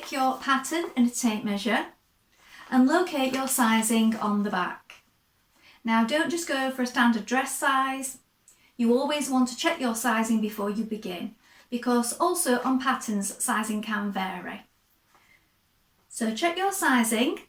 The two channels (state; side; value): identical; both; correlation 1.00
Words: your pattern and a tape measure and locate your sizing on the back. Now, don't just go for a standard dress size. You always want to check your sizing before you begin, because also on patterns sizing can vary. So check your sizing,